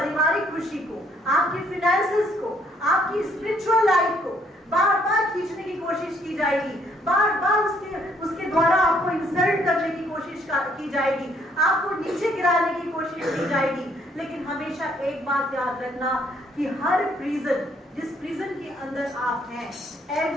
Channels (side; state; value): both; normal; correlation 0.67